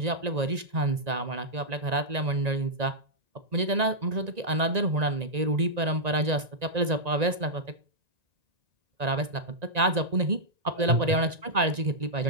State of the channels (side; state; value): left; late; 1.9 ms